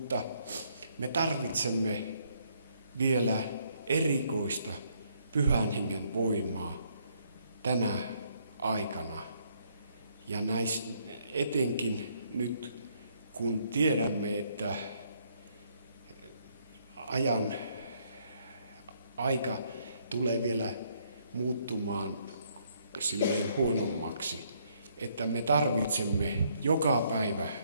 me tarvitsemme vielä erikoista Pyhän Hengen voimaa tänä aikana. Ja etenkin nyt, kun tiedämme, että aika tulee vielä muuttumaan silleen huonommaksi, että me tarvitsemme joka päivä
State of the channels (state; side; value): inverted; both; correlation -0.69